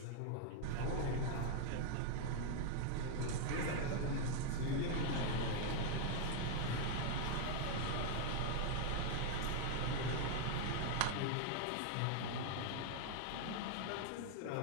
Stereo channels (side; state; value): both; different; correlation 0.00